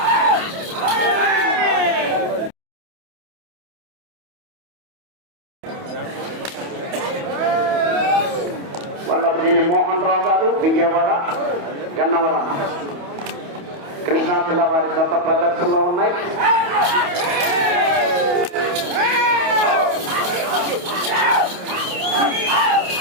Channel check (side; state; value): left; late; 28 ms